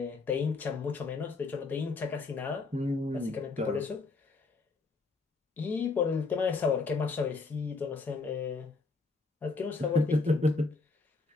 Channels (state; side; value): quieter; right; 3.8 dB